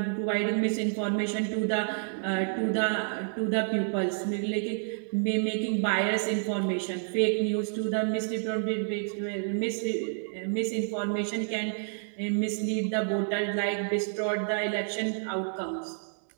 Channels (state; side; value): silent; left; digital silence